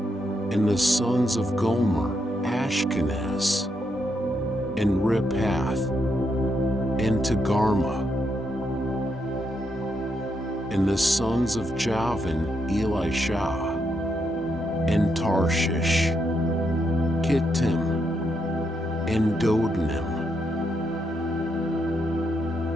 And the sons of Gomer, Ashkenaz, and Riphath, and Togarmah. And the sons of Javan, Elisha, and Tarshish, Kittim, and Dodanim.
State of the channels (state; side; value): normal; both; correlation 0.80